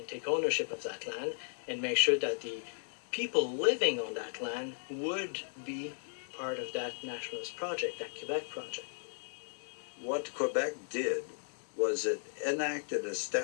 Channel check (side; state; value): right; silent; digital silence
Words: take ownership of that land and make sure that the people living on that land would be part of that nationalist project, that Quebec project. What Quebec did was it enacted a